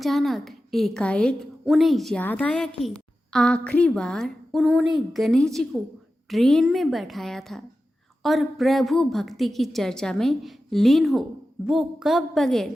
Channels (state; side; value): normal; both; correlation 0.93